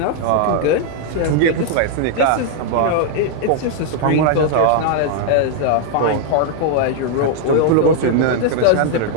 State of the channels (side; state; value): both; different; correlation -0.01